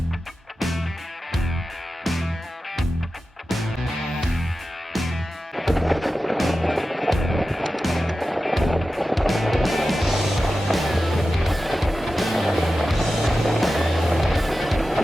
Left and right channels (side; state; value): both; normal; correlation 0.93